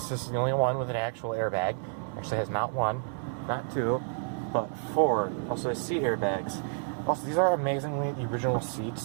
the only one with an actual airbag. Actually has not one, not two, but 4. Also has seat airbags. Also, these are amazingly the original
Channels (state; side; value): silent; left; 58 dB below the other